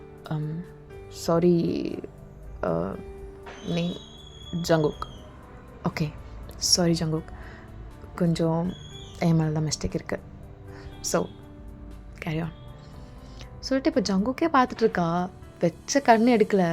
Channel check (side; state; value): both; identical; correlation 1.00